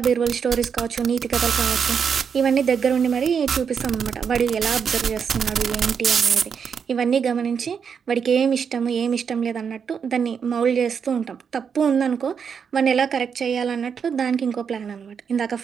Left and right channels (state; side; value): quieter; left; 6.8 dB